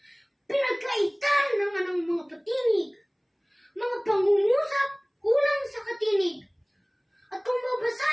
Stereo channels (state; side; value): identical; both; correlation 1.00